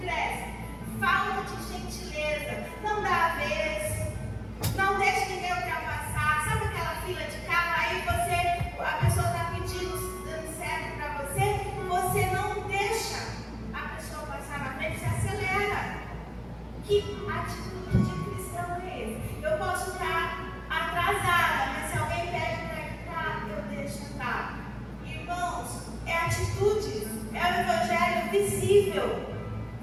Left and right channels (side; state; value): both; identical; correlation 1.00